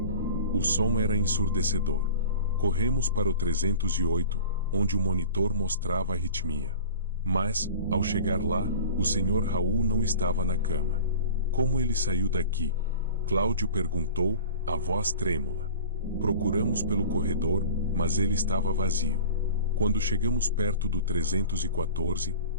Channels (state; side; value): inverted; both; correlation -0.38